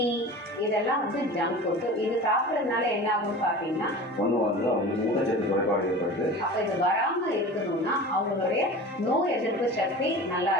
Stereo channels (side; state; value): both; normal; correlation 0.35